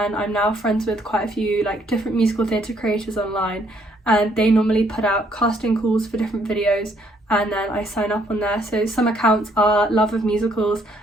I'm now friends with quite a few like different musical theatre creators online, and they normally put out casting calls for different videos and then I sign up on there. So some accounts are Love of Musicals,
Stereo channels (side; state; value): both; normal; correlation 0.68